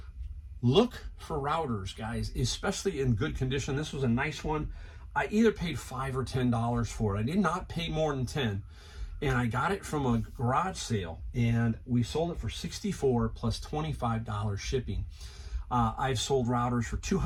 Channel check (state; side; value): identical; both; correlation 1.00